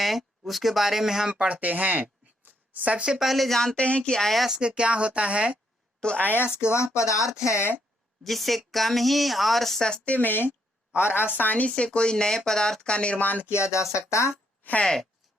उसके बारे में हम पढ़ते हैं। सबसे पहले जानते हैं कि अयस्क क्या होता है। तो अयस्क वह पदार्थ है जिससे कम ही और सस्ते में और आसानी से कोई नए पदार्थ का निर्माण किया जा सकता है।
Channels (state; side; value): normal; both; correlation 0.74